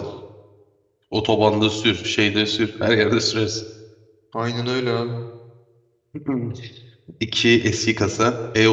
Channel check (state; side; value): identical; both; correlation 1.00